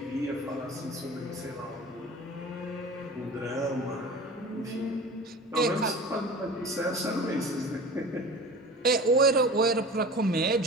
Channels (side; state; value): both; normal; correlation 0.36